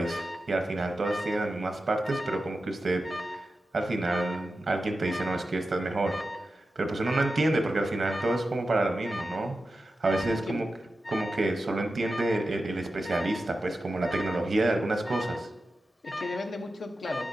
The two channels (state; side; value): normal; both; correlation 0.92